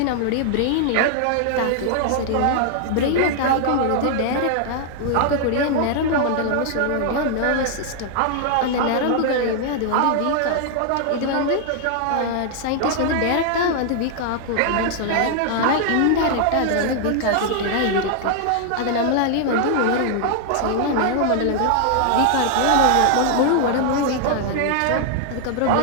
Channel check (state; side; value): different; both; correlation 0.00